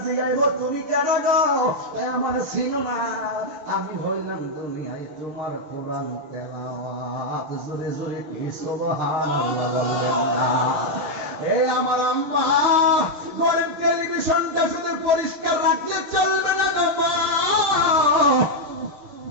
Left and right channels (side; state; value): left; late; 6.6 ms